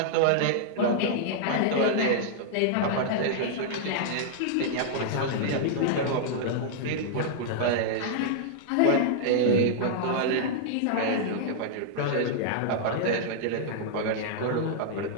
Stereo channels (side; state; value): both; different; correlation -0.01